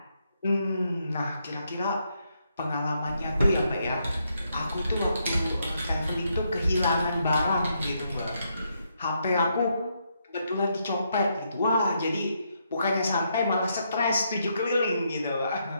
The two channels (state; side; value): inverted; both; correlation -0.78